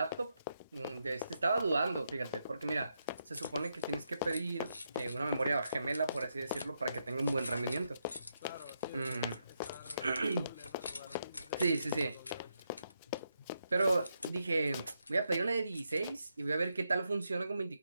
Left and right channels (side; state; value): both; inverted; correlation -0.82